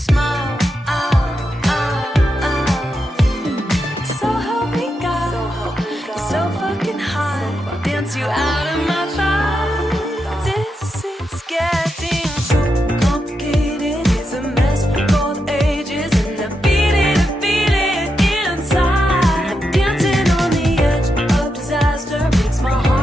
So help me God, so fucking high. Dance you out of my thoughts. This is getting so complicated. It's a mess for the ages, and I feel it inside. I'm dancing on the edge of disaster. Makes my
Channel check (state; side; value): normal; both; correlation 0.85